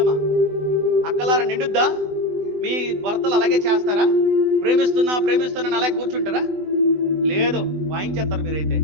అక్కలారా నిండుద్దా? మీ భర్తలు అలాగే చేస్తారా? ప్రేమిస్తున్నా ప్రేమిస్తున్నా అలాగే కూర్చుంటారా? లేదు, వాయించేస్తారు మీరైతే.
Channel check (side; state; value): left; late; 20 ms